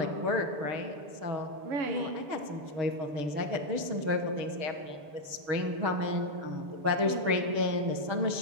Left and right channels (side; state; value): left; late; 6.9 ms